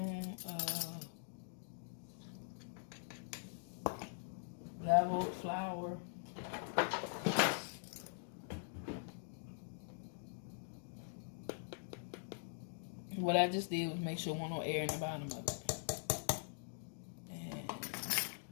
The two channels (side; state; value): right; silent; digital silence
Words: of leveled flour. What I just did was make sure there was no air in the bottom of it. And